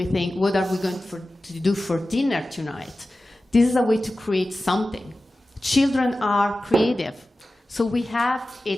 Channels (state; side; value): normal; both; correlation 0.95